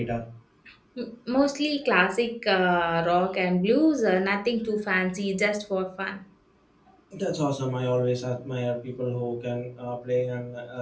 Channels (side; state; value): both; identical; correlation 1.00